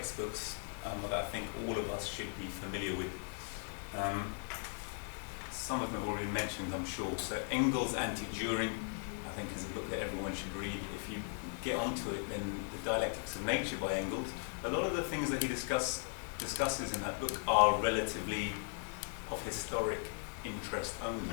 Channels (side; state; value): right; silent; 52 dB below the other